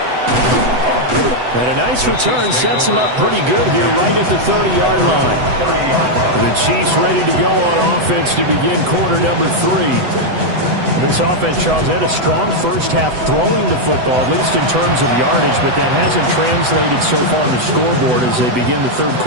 And a nice return sets them up pretty good here right at the 30-yard line. The Chiefs ready to go on offense to begin quarter number 3. This offense, Charles, had a strong first half throwing the football, at least in terms of yardage, but that hasn't translated so far on the scoreboard as they begin the third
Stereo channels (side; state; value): left; late; 8.0 ms